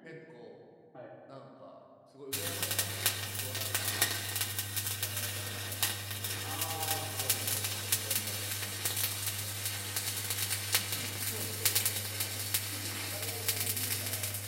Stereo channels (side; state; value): both; identical; correlation 1.00